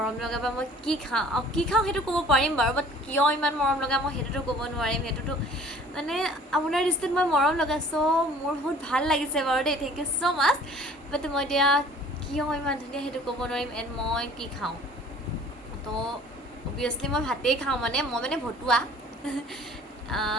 লগা বা মই কি খাওঁ সেইটো ক'ব পাৰিম বাৰু, বাট কিয় ইমান মৰম লগা মই সেইটোতো ক'ব নোৱাৰিম। সেইটোতো মানে আপোনাৰ দৃষ্টিত মই মৰম লগা। চ' মোৰ বহুত ভাল লাগিছে বাৰু দেই, থেংক ইউ ছ' মাছ। বাট মই এতিয়া কিয় ইমান ধুনীয়া সেইটো ক'ব নোৱাৰিম। এণ্ড মই কি খাওঁ? তো অবভিয়াছলি মই ভাতেই খাওঁ। মানে মই মানে ভতুৱা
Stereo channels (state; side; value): normal; both; correlation 0.51